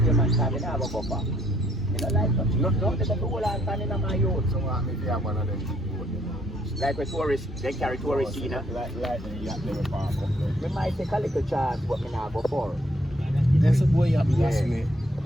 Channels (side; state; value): both; normal; correlation 0.68